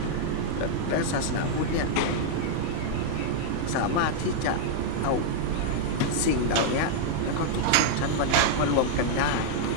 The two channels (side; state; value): both; different; correlation -0.01